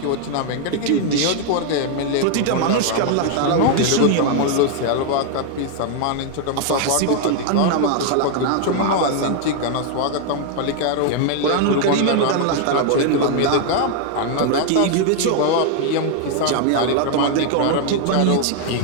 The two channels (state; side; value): different; both; correlation 0.00